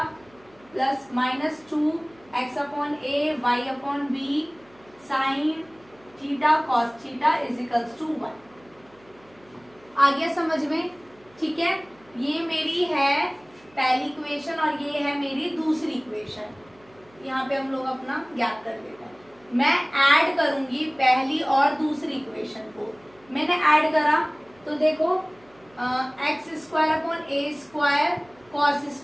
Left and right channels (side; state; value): right; noise; hum, 29 dB below the sound